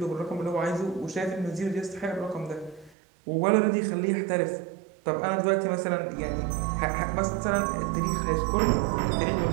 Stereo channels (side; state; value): left; drops out; at 3.0 s